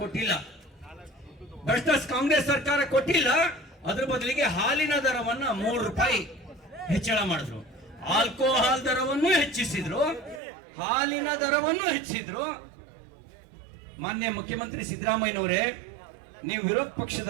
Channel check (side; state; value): left; drops out; at 10.4 s